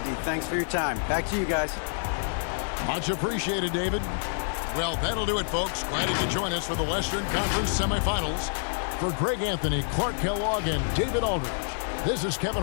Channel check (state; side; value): silent; right; digital silence